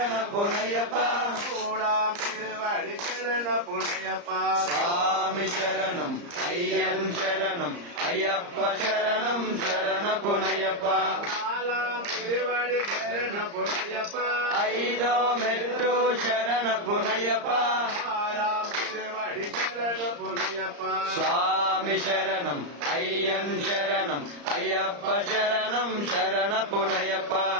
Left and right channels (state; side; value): late; left; 34 ms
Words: புனையப்பா கூடாம் திருவடி சரண புனையப்பா சுவாமி சரணம் ஐயன் சரணம் ஐயப்ப சரணம் சரண புனையப்பா நாலாம் திருவடி சரண புனையப்பா ஐதோ மெட்டோ சரண புனையப்பா ஆறாம் திருவடி சரண புனையப்பா சுவாமி சரணம் ஐயன் சரணம் ஐயப்ப சரணம் சரண புனையப்பா